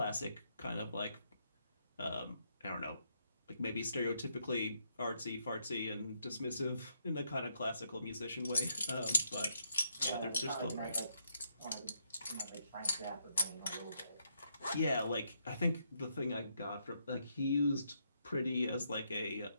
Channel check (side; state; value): both; inverted; correlation -0.75